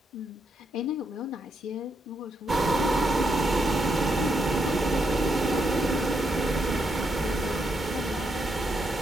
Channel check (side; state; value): both; normal; correlation 0.80